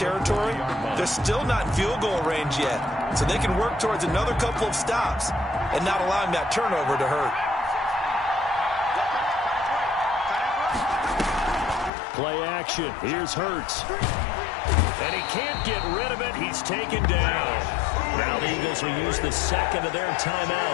they're still not in field goal range yet. So they can work towards another couple of stops and not allowing that turnover to hurt. Play action. Here's Hurts. And he can't get rid of it. He's taken down. Now the Eagles will use the second of their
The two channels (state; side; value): drops out; right; at 11.9 s